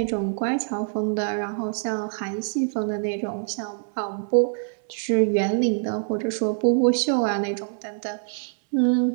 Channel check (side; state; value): left; silent; digital silence